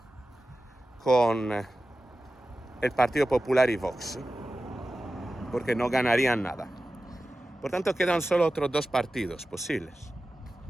con el Partido Popular y Vox, porque no ganarían nada. Por tanto, quedan solo otros dos partidos posibles.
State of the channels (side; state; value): both; normal; correlation 0.94